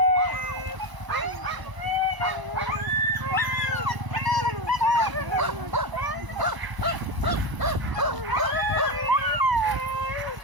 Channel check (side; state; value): left; late; 1.0 ms